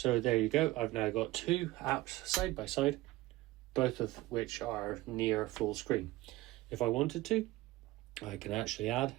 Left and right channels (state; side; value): quieter; left; 18.4 dB